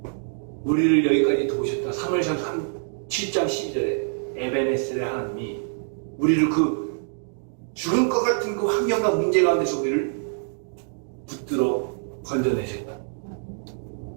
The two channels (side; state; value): left; silent; digital silence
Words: 우리를 여기까지 도우셨다. 사무엘상 7장 12절에 에베네셀의 하나님이 우리를 그 죽을 것 같은 그 환경과 문제 가운데서 우리를 붙들어 건져내셨다.